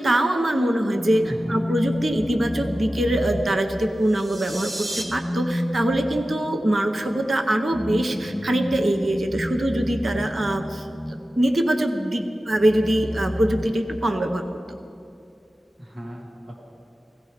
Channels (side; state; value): both; normal; correlation 0.94